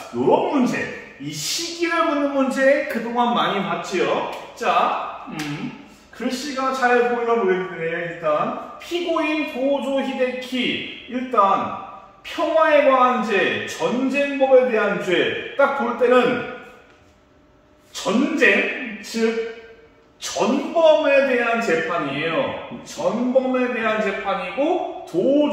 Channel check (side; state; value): both; identical; correlation 1.00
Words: 이런 문제, 이 시기를 묻는 문제 그동안 많이 봤지요. 자, 글씨가 잘 보이나 모르겠네요. 일단 피고인 도조 히데키, 일단 평화에 관한 죄, 전쟁법에 대한 죄, 딱 볼 때는 전쟁, 즉 전범에 대한 재판이에요. 전범에 대한 재판이고,